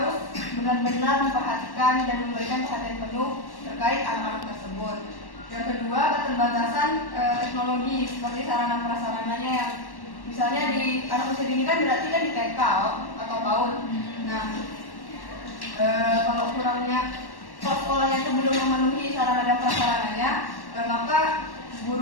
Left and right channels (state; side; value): late; right; 1.1 ms